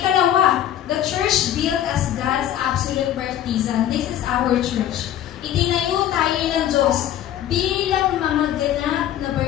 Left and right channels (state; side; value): quieter; right; 11.4 dB